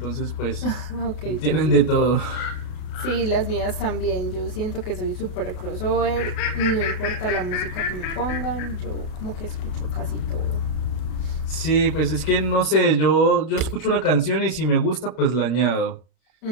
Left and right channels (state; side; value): late; right; 33 ms